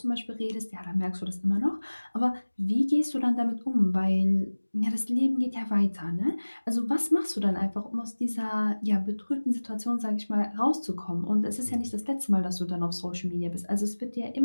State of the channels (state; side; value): inverted; both; correlation -1.00